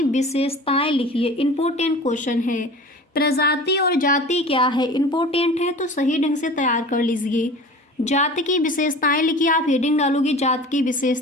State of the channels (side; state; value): both; normal; correlation 0.39